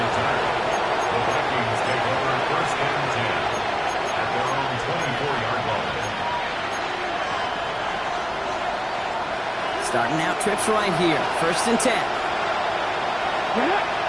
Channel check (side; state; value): both; identical; correlation 1.00